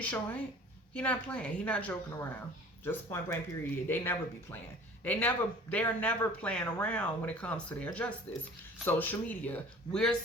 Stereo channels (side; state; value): both; normal; correlation 0.46